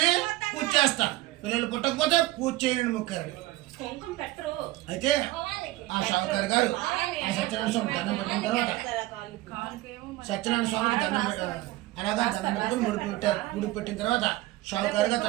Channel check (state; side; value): quieter; left; 18.2 dB